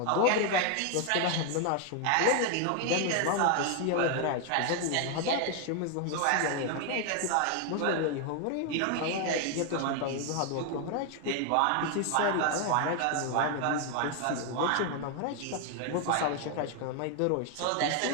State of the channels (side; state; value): both; different; correlation 0.01